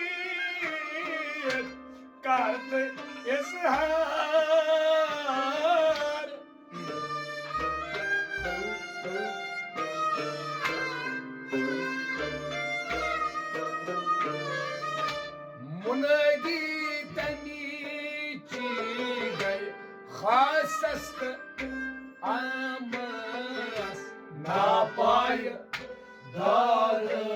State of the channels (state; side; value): identical; both; correlation 1.00